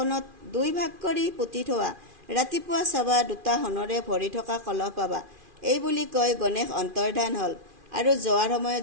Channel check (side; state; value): left; late; 2.4 ms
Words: 2 ভাগ কৰি পুতি থোৱা। ৰাতিপুৱা চাবা, 2টা সোণৰে ভৰি থকা কলহ পাবা। এই বুলি কৈ গণেশ অন্তৰ্ধান হ'ল আৰু যোৱাৰ সময়ত